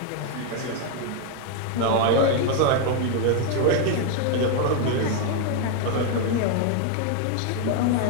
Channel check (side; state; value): both; different; correlation 0.00